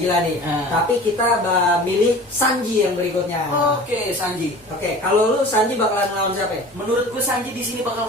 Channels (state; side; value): normal; both; correlation 0.41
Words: nih. Tapi kita milih Sanji yang berikutnya. Oke, Sanji. Oke, kalau lu Sanji bakalan lawan siapa ya? Menurut gue Sanji di sini bakal